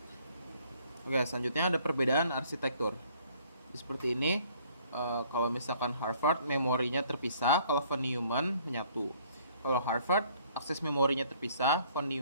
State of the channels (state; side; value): inverted; both; correlation -0.60